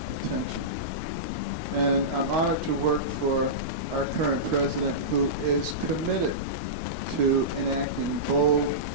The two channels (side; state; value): left; late; 13 ms